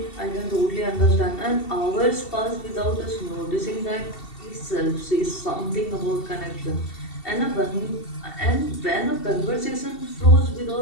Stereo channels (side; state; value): right; late; 2.7 ms